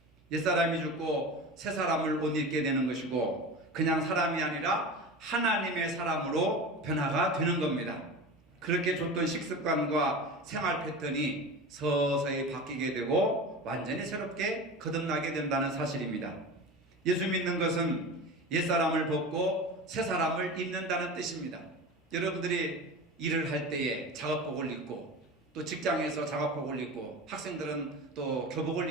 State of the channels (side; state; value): both; normal; correlation 0.30